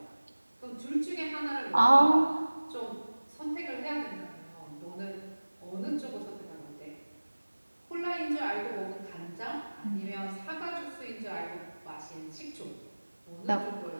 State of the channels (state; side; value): inverted; both; correlation -1.00